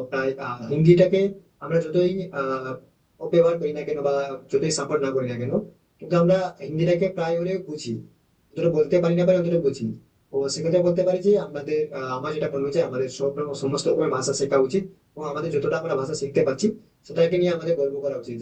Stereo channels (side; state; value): both; identical; correlation 1.00